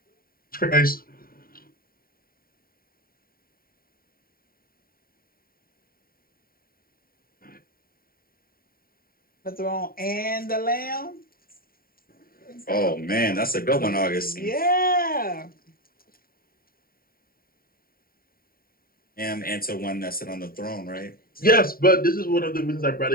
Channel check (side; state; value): right; late; 0.43 ms